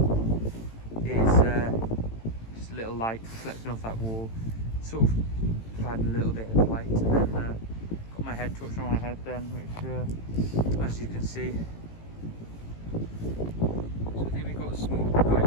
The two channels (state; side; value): late; right; 18 ms